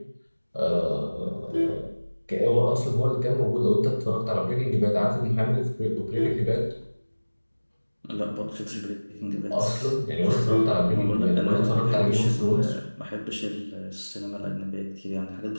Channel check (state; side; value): inverted; both; correlation -1.00